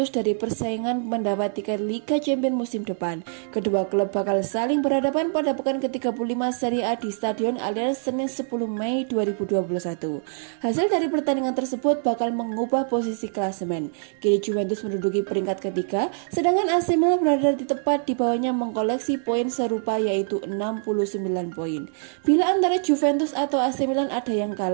dari persaingan mendapat tiket Liga Champions musim depan. Kedua klub bakal saling berhadapan pada pekan ke-35 Serie A di Stadion Allianz Senin 10 Mei 2021. Hasil dari pertandingan tersebut bakal mengubah posisi klasemen. Kini Juventus menduduki peringkat ketiga, sedangkan AC Milan berada di tepat di bawahnya mengkoleksi poin serupa yaitu 69 poin. Bila antara Juventus atau AC Milan ada yang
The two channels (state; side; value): silent; left; 60 dB below the other